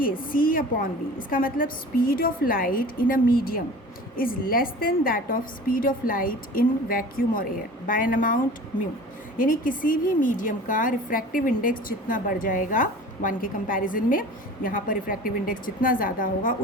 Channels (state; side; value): normal; both; correlation 0.40